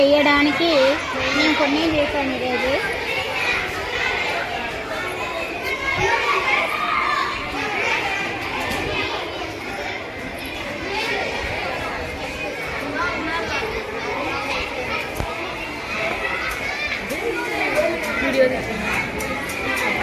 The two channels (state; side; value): identical; both; correlation 1.00